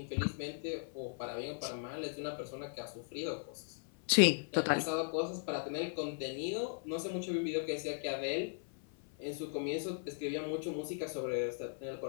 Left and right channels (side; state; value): right; silent; 53 dB below the other